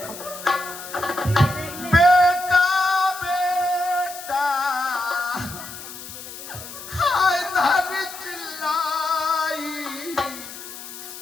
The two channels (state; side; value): noise; left; hiss, 12 dB below the sound